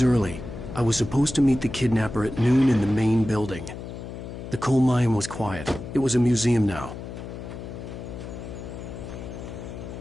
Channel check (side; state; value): left; noise; hum, 10 dB below the sound